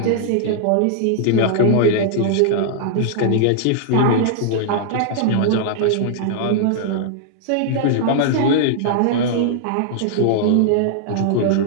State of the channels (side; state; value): both; different; correlation -0.01